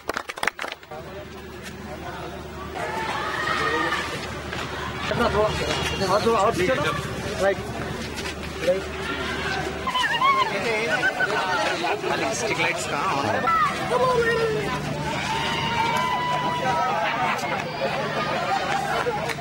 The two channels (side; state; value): both; identical; correlation 1.00